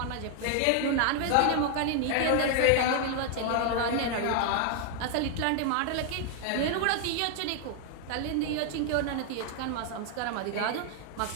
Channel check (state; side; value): different; both; correlation 0.00